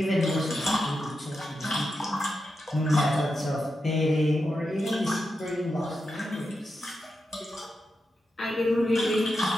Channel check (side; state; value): both; normal; correlation 0.88